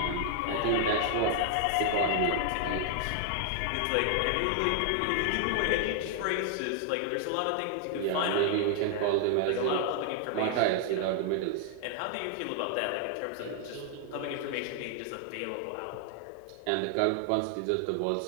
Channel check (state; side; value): different; both; correlation 0.00